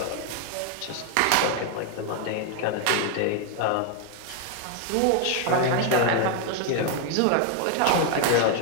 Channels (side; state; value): both; different; correlation 0.01